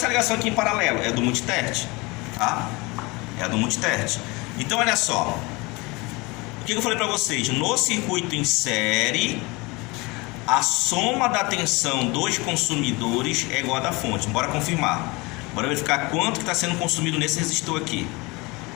ligação aqui em paralelo é do multitert, tá? É a do multitert. Então olha só. O que eu falei para vocês? No circuito em série, a soma da tensão dos consumidores é igual a da fonte. Bora confirmar. Bora verificar quanto que está sendo consumido nesse resistor aqui.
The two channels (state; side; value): quieter; right; 25.1 dB